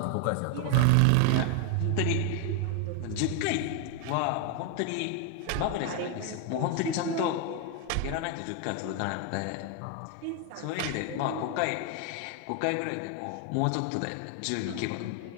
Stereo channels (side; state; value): both; different; correlation 0.01